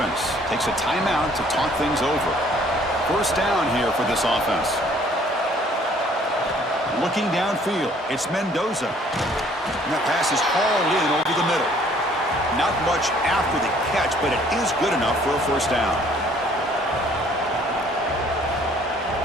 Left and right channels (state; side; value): normal; both; correlation 0.59